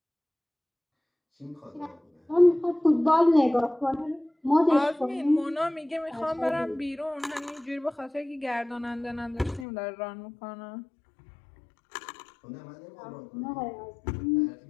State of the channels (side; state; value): right; drops out; at 9.7 s